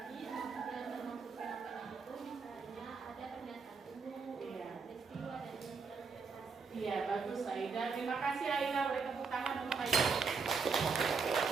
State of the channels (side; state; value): left; quieter; 5.0 dB